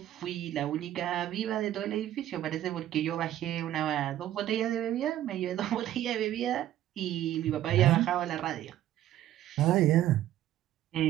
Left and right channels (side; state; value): left; quieter; 12.7 dB